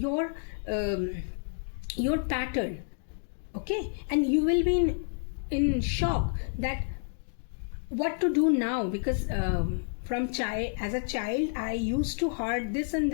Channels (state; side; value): silent; right; digital silence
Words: pattern, okay, and you will be in shock that what to do now, because as a child I used to heard this and